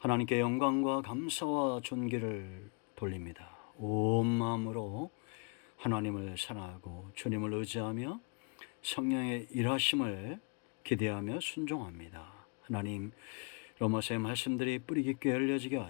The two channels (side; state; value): right; quieter; 36.7 dB